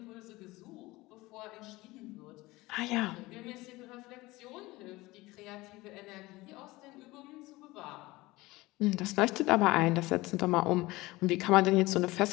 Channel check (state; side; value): quieter; right; 20.3 dB